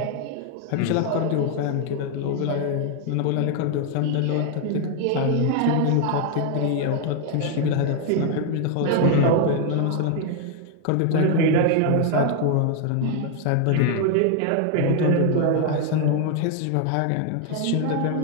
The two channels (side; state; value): both; different; correlation 0.00